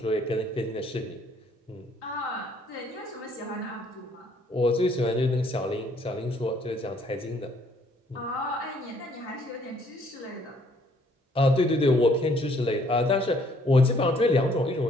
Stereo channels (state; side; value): normal; both; correlation 0.63